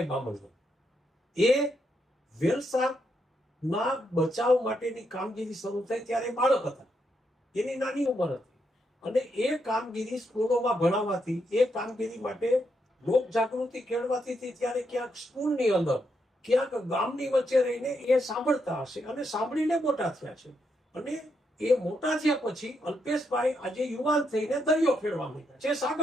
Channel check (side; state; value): both; normal; correlation 0.79